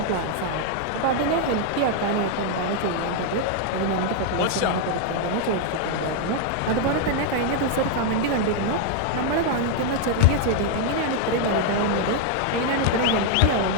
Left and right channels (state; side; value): different; both; correlation 0.00